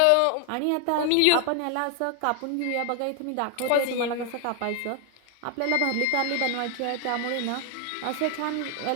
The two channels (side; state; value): both; different; correlation 0.00